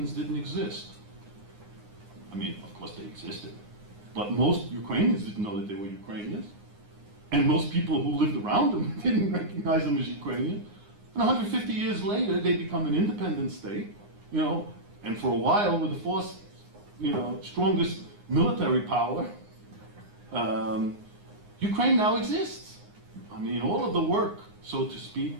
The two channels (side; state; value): left; late; 9.7 ms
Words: didn't exist. I mean, of course they existed, but most Ukrainians didn't know that they were Ukrainians. And most people who lived around them didn't recognize them as Ukrainian. And 150 years later, they become an independent state, and for a while were the fourth, strongest military power. Ukraine now exists. I mean, all of the work, so to